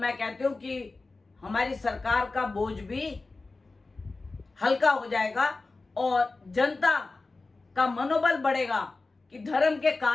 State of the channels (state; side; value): quieter; right; 3.6 dB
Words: कहती हूँ कि हमारी सरकार का बोझ भी हल्का हो जाएगा और जनता का मनोबल बढ़ेगा कि धर्म के